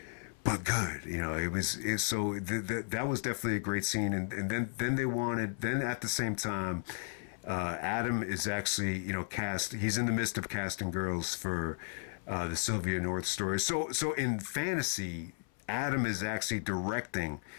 but good. That was definitely a great scene. And then at the same time, Adam is actually, cast. He's in the midst of casting girls for the Sylvia North story. So in fantasy, Adam is actually directing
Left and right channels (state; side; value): silent; right; 55 dB below the other